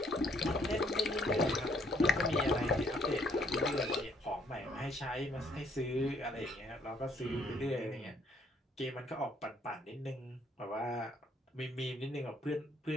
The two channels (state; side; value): normal; both; correlation 0.67